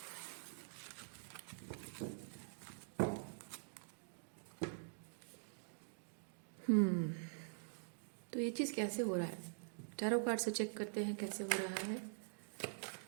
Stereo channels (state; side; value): silent; left; digital silence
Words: तो ये चीज़ कैसे हो रहा है, टैरो कार्ड से चेक करते हैं कैसे हो रहा है।